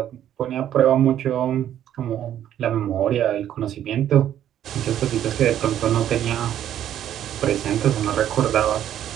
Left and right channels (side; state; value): left; quieter; 10.9 dB